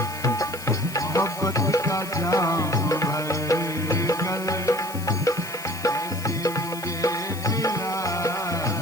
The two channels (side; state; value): left; noise; hiss, 14 dB below the sound